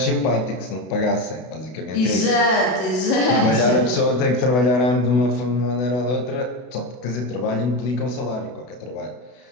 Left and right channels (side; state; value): right; late; 32 ms